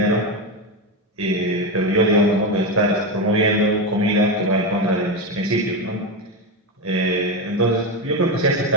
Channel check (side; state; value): both; normal; correlation 0.13